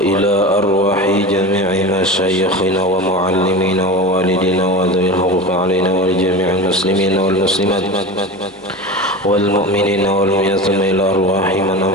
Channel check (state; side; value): normal; both; correlation 0.28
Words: arwahi jami'i masyayikhina wa muallimina wa walidina wa dhawil huquq alaina wa li jami'il muslimina wal muslimat والمؤمنين والمؤمنات إلى أرواح من